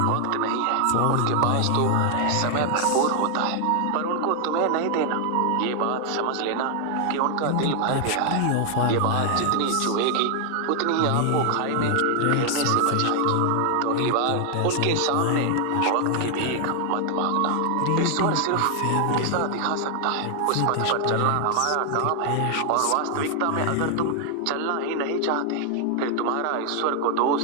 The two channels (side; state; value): both; different; correlation 0.00